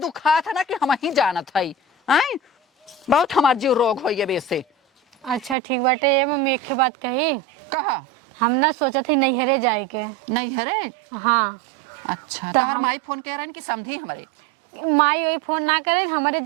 दुखा था ना कि हम ही जानत है हैं बहुत हमार जीव रोग होइए बेसे। अच्छा ठीक बाटे ये मम्मी एक बात कही कहा हम ना सोचा थी नैहरे जाए के नैहरे हां अच्छा तो हर माई फोन कह रहे कि समझी हमारे माई वही फोन ना करे हमारे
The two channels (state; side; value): drops out; left; at 5.6 s